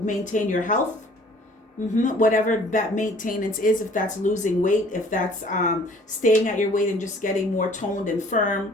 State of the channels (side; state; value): both; normal; correlation 0.54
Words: your health? Whatever that maintenance is, if that's losing weight, if that's staying at your weight and just getting more toned and